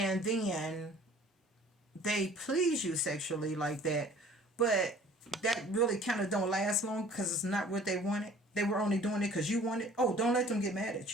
then they please you sexually like that, but that really kind of don't last long because it's not what they wanted? They were only doing it because you wanted. Oh, don't let them get mad at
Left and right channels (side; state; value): both; normal; correlation 0.50